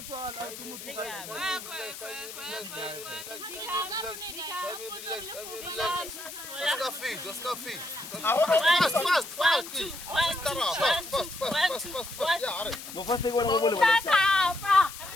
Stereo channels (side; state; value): left; noise; hiss, 12 dB below the sound